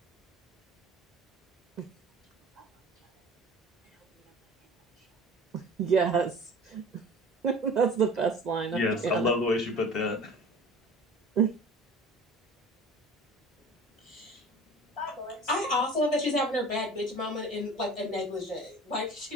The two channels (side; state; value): both; normal; correlation 0.42